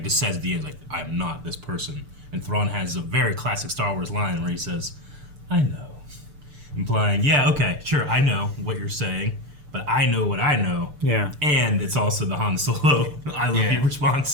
just says at the end like, I'm not this person. And Thrawn has a very classic Star Wars line where he says, I know, implying, yeah, okay, sure, I know what you're saying, but I know what I know. Yeah. And it's also the Han Solo I love you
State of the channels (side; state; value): left; late; 6.8 ms